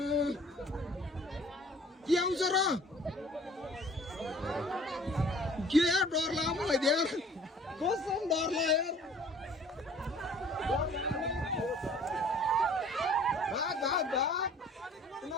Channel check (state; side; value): normal; both; correlation 0.51